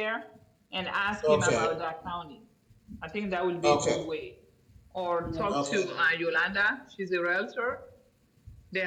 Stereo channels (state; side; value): identical; both; correlation 1.00